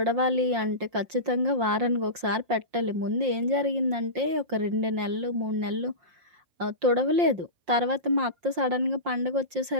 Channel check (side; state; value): left; late; 5.6 ms